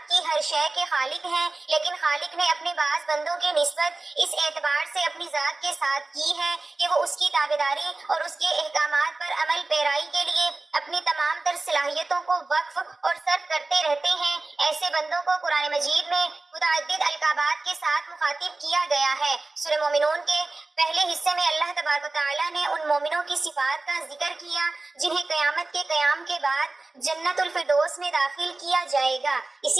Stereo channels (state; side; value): quieter; left; 3.2 dB